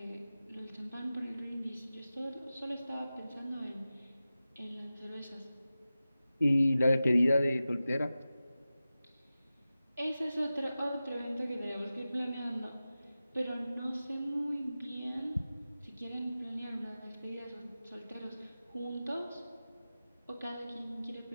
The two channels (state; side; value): inverted; both; correlation -0.94